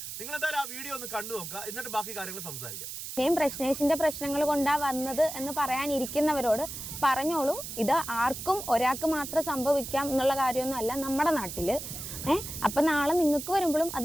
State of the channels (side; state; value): right; noise; hiss, 8 dB below the sound